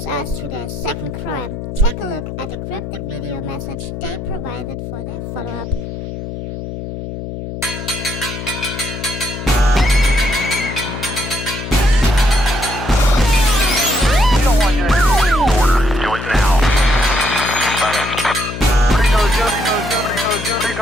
us to their second crime. Take a look at the cryptic video message they provided for their follow-up.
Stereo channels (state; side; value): noise; left; hum, 8 dB below the sound